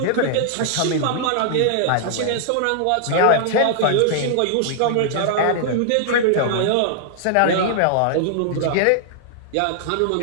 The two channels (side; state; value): both; different; correlation -0.01